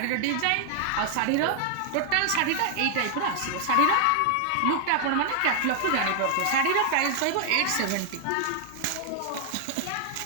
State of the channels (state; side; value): different; both; correlation 0.00